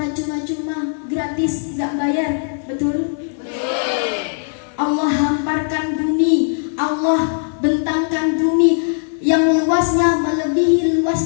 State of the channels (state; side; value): silent; right; digital silence